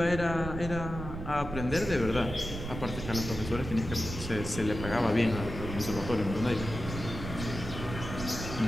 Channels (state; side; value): noise; right; rumble, 7 dB below the sound